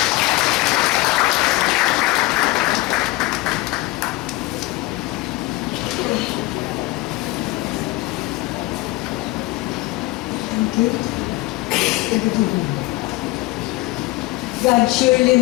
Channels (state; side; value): quieter; right; 19.7 dB